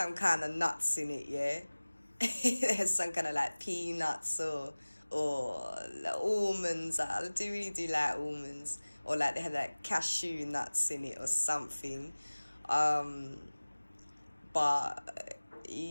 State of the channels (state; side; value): inverted; both; correlation -1.00